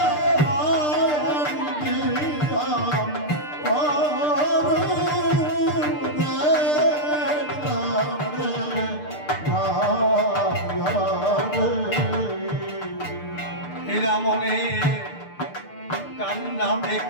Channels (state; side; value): late; right; 6.7 ms